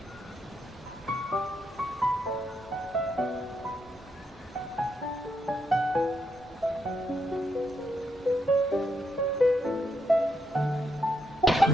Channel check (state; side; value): normal; both; correlation 0.79